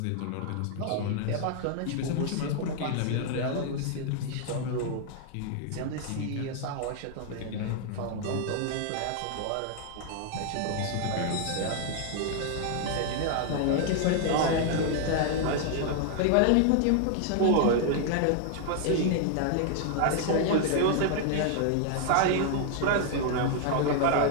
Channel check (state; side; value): different; both; correlation 0.00